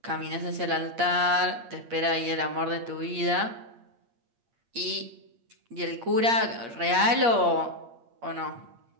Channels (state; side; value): late; left; 8.6 ms